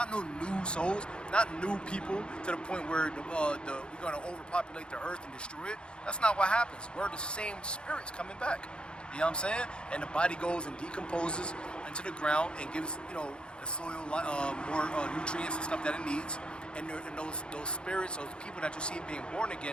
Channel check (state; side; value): late; right; 0.053 ms